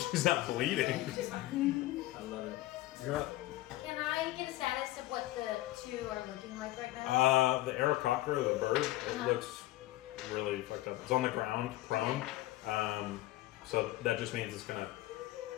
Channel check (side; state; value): right; quieter; 16.7 dB